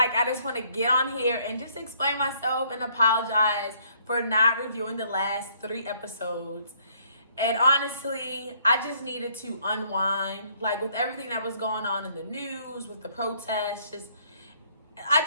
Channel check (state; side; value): inverted; both; correlation -0.65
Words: just want to get on here and just explain myself and apologize for not reviewing the last 3 episodes. And honestly, I just needed to unwind, with everything that was going on in the news, with the protests,